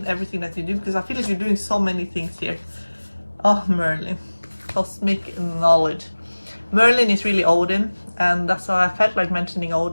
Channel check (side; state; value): both; inverted; correlation -1.00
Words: everything that you do, because I feel like you're doing so many things here. Oh, Merlin. Cosmic knowledge. Merlin is really Odin, and that's why I felt like mentioning